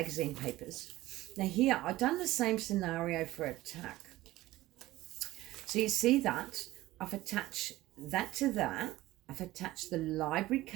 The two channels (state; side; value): quieter; left; 17.0 dB